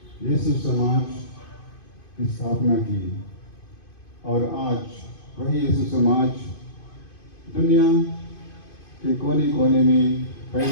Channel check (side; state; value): right; late; 2.5 ms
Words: यीशु समाज की स्थापना की। और आज वही यीशु समाज दुनिया के कोने कोने में